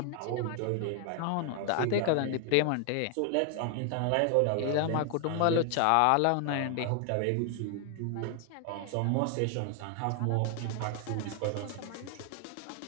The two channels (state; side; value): different; both; correlation 0.00